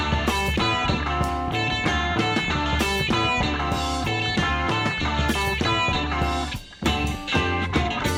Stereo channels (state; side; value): identical; both; correlation 1.00